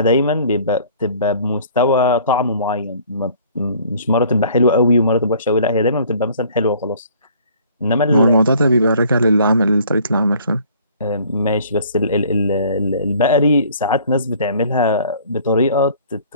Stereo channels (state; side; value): inverted; both; correlation -0.54